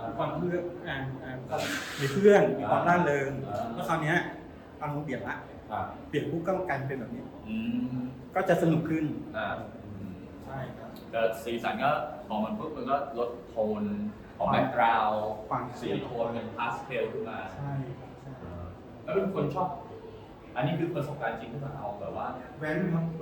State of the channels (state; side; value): identical; both; correlation 1.00